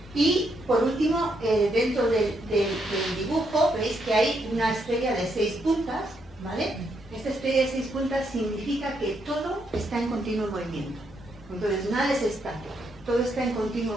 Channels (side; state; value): both; normal; correlation 0.77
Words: Y por último, dentro del dibujo, veis que hay una estrella de 6 puntas, ¿vale? Esta estrella de 6 puntas significa que todo está en continuo movimiento. Entonces, nada es estático, todo está en